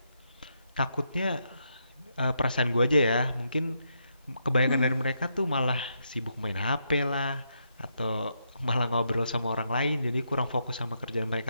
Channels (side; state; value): both; inverted; correlation -0.80